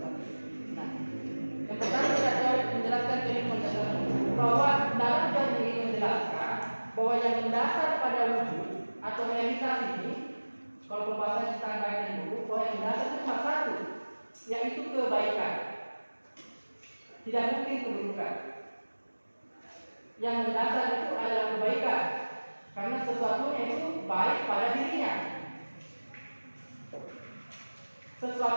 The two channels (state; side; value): inverted; both; correlation -1.00